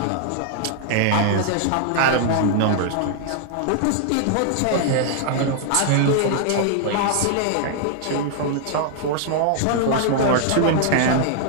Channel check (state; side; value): different; both; correlation -0.01